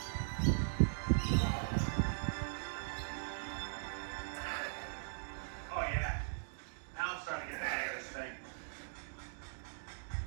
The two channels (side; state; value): left; silent; digital silence